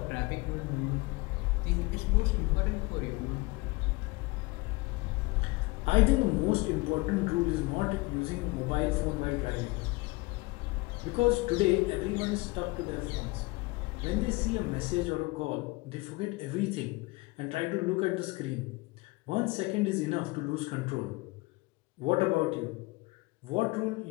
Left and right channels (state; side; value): quieter; right; 23.4 dB